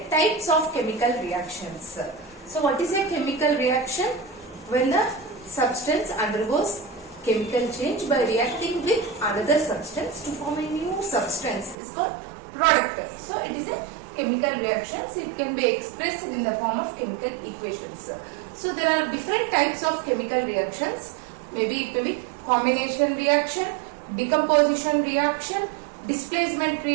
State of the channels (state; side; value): drops out; left; at 11.8 s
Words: types of chemical reactions. So what is a chemical reaction? When the substance undergoes chemical change by reacting with another substance to form a new substance is called product. So it is a chemical reaction. So it can be expressed in the form of chemical equations. So there are different types of chemical reactions. Maybe it may be combination reaction, decomposition reaction, displacement